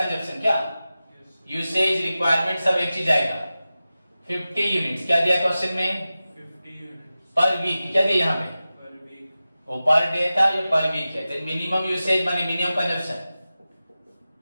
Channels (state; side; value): inverted; both; correlation -0.95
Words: क्या यूसेज रिक्वायरमेंट सब एक चीज आएगा। 50 यूनिट्स क्या दिया क्वेश्चन में, 50 यूनिट्स पर वीक। क्या दिया यहाँ पे, पर वीक। वो पर डे था, ये पर वीक है। तो मिनिमम यूसेज माने मिनिमम कंजप्शन